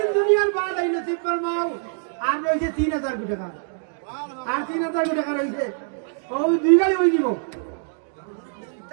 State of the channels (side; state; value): left; silent; digital silence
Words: দুনিয়ার বাদ এই নসিব ফরমাও আর রইছে 3000 টাকা আর 3000 টাকা রইছে ও দুই গাড়ি হই দিব